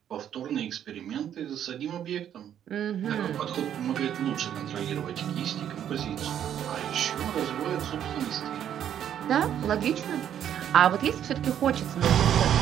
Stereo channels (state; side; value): quieter; left; 9.9 dB